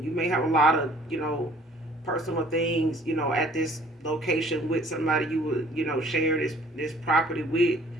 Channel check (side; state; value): both; normal; correlation 0.55